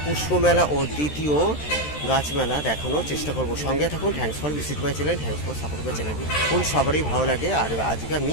পুষ্প মেলা ও দ্বিতীয় গাছমেলা দেখানোর চেষ্টা করব। সঙ্গে থাকুন। Thanks for visit my channel, thanks for support my channel. কোন সবারই ভালো লাগে। আর আজকে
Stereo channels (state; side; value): late; right; 13 ms